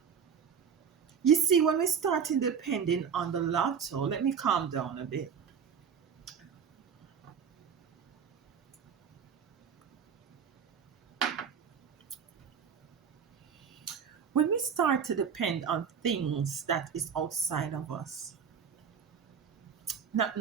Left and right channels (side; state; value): left; quieter; 7.0 dB